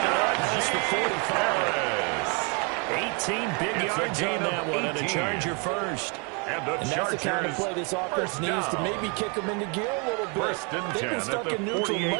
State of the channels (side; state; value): left; quieter; 34.4 dB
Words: it up past the 45. 18 big yards on that one, and a Charger first. And that's the kind of play this offense needs to maybe kick them into gear a little bit. They've been stuck in neutral